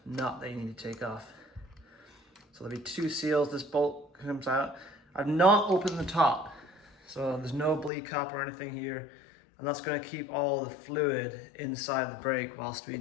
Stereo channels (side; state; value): right; drops out; at 7.9 s